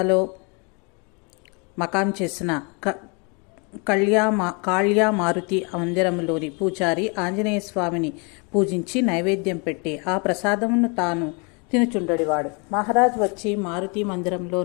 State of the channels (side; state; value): right; quieter; 32.9 dB